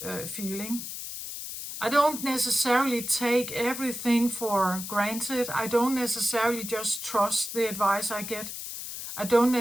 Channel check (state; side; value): noise; left; hiss, 8 dB below the sound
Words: feeling. I don't necessarily take everything for granted. I don't necessarily just trust the advice I get. I